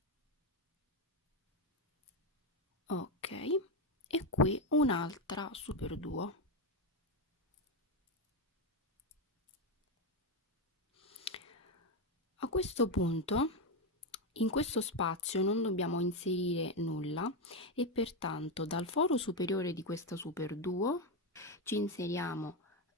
Ok, e qui un'altra superduo. A questo punto in questo spazio non dobbiamo inserire nulla e pertanto dal foro superiore di questa superduo ci inseriamo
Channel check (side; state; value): both; normal; correlation 0.08